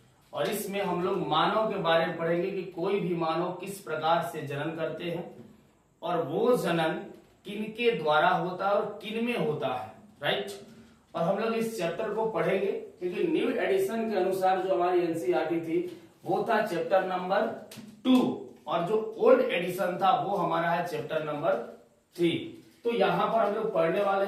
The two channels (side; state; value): both; identical; correlation 1.00